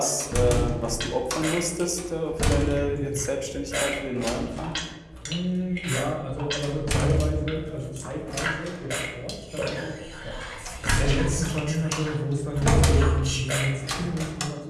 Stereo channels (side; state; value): both; identical; correlation 1.00